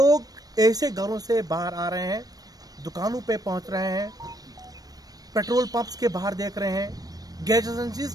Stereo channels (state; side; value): late; left; 0.18 ms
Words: ऐसे घरों से बाहर आ रहे हैं, दुकानों पे पहुंच रहे हैं, पेट्रोल पंप्स के बाहर देख रहे हैं, गैस एजेंसीज